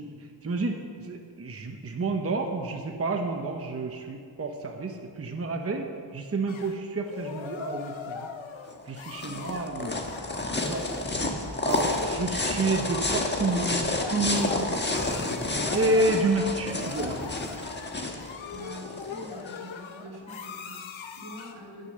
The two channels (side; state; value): both; normal; correlation 0.18